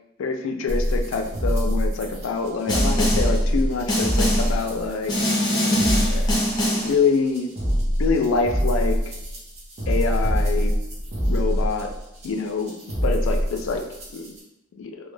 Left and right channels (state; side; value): normal; both; correlation 0.60